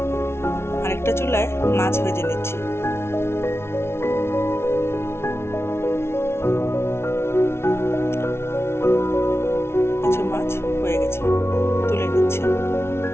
আরেকটা চুলায় মাছ ভেজে নিচ্ছি। কিছু মাছ হয়ে গেছে, তুলে নিচ্ছি।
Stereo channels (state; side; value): late; right; 0.12 ms